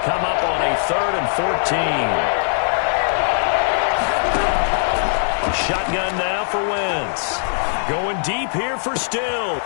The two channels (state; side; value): silent; right; digital silence